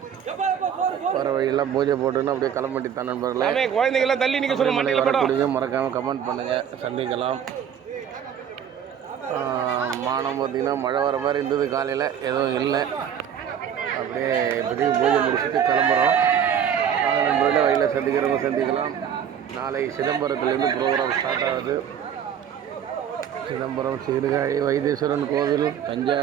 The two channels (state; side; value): quieter; left; 8.7 dB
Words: வர வழியெல்லாம் பூஜை போட்டுன்னு அப்படியே கிளம்பிட்டு தான் நண்பர்களே. குழந்தைங்களாம் தள்ளி நிற்க சொல்லுங்க. வரக்கூடியவங்க மறக்காமல் கமெண்ட் பண்ணுங்கள். சந்திக்கலாம். வானம் பார்த்திங்கன்னா மழை வர மாதிரி இருந்தது காலையில், எதுவும் இல்லை. அப்படியே இப்போதைக்கு பூஜை முடிச்சுட்டு கிளம்புறோம். நாங்கள் நண்பர்களே வழியில் சந்திக்கிறவங்க சந்திக்கலாம். நாளை சிதம்பரத்துலேருந்து ப்ரோக்ராம் ஸ்டார்ட் ஆகுது. சிதம்பரம், சீர்காழி, வைத்தீஸ்வரன் கோவில்,